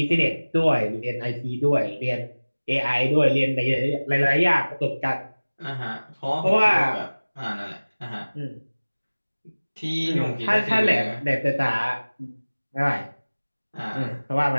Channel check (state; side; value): inverted; both; correlation -1.00